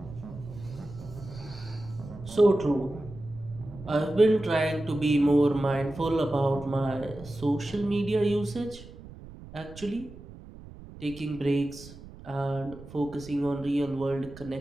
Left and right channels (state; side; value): noise; right; rumble, 17 dB below the sound